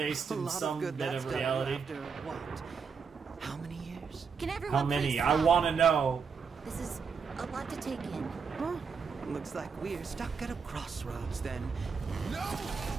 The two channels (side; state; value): left; quieter; 5.8 dB